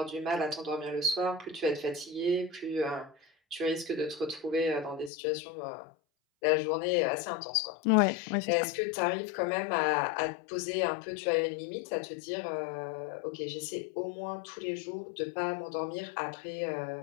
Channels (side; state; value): right; drops out; at 5.1 s